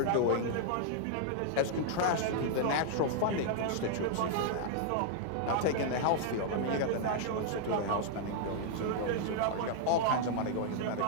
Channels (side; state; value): both; different; correlation -0.01